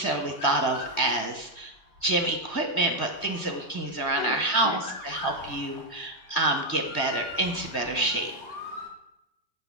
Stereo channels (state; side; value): late; right; 2.0 ms